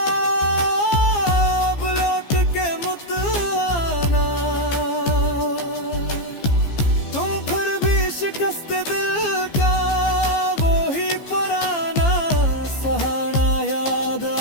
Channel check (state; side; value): late; right; 15 ms